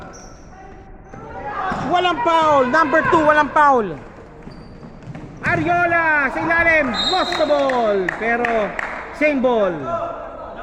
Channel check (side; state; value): both; identical; correlation 1.00